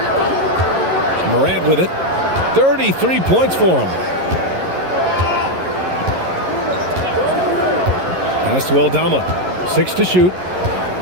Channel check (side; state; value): left; late; 11 ms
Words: Morant with it. 33 points for him. Pass to Aldama. 6 to shoot.